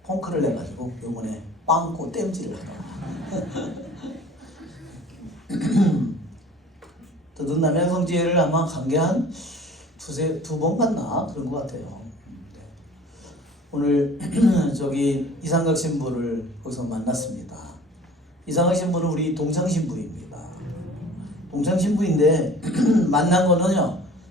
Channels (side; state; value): both; normal; correlation 0.47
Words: 펑크를 내가지고 이번에 빵꾸 땜질을 하러 더든 남양성지회를 아마 간 게 한 두 번 갔나 그런 것 같아요. 오늘 저기 이상각 신부를 거기서 만났습니다. 이상각 신부는 우리 동창 신부입니다. 동창 신부인데 만난 거는요